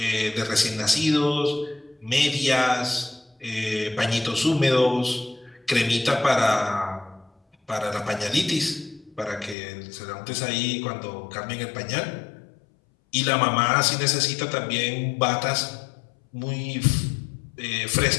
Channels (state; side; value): drops out; right; at 9.6 s